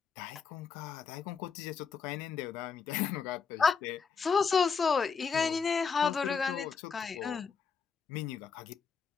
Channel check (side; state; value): right; quieter; 5.7 dB